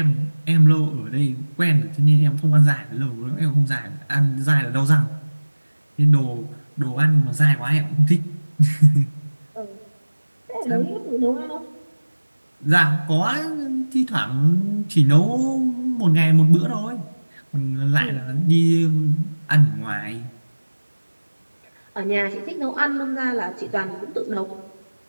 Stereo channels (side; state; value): both; inverted; correlation -1.00